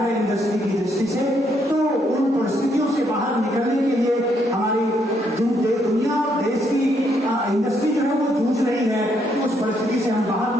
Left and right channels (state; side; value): normal; both; correlation 0.73